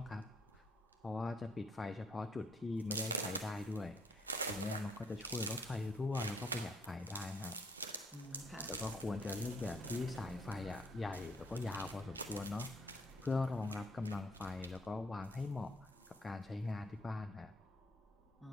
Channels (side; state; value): both; normal; correlation 0.66